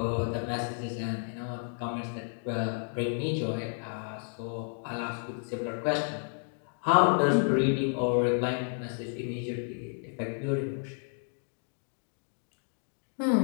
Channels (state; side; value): silent; right; 57 dB below the other